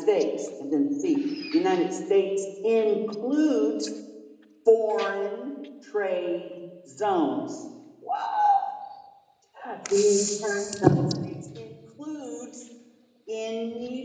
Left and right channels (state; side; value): identical; both; correlation 1.00